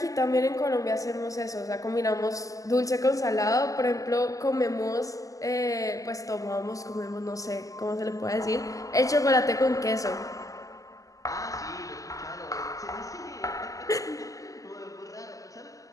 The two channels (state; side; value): late; right; 0.17 ms